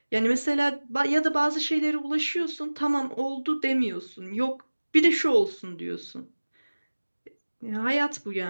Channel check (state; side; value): inverted; both; correlation -1.00